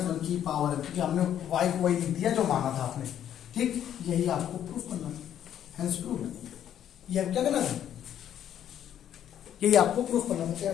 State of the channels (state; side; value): quieter; right; 10.3 dB